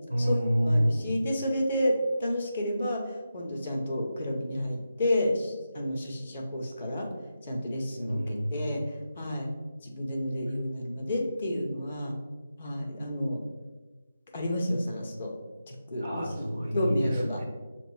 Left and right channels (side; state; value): both; inverted; correlation -0.89